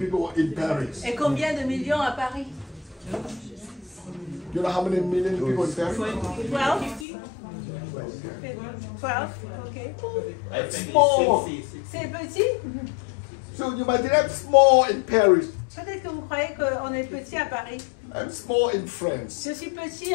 in Paris? Et combien de millions à Paris? You know how many million people in Paris? 12? 12, ok. Small. C'est petit? So you might have small in Paris. Peut-être que vous croyez qu'on est petit à Paris. I'm small in France. Je suis petit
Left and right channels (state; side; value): drops out; right; at 7.1 s